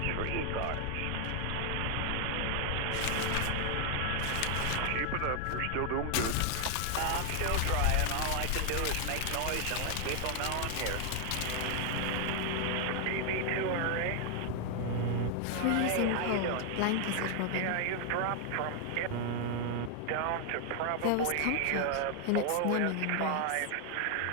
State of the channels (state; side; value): different; both; correlation 0.00